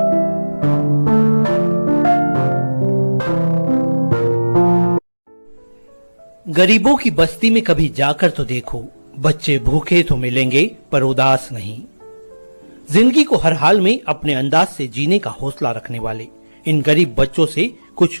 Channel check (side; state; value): both; inverted; correlation -1.00